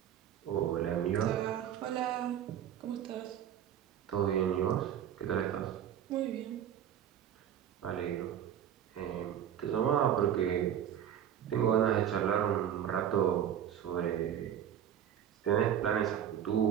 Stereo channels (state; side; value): quieter; left; 9.9 dB